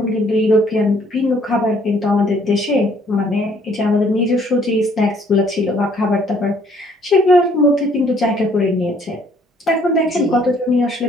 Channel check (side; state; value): both; normal; correlation 0.62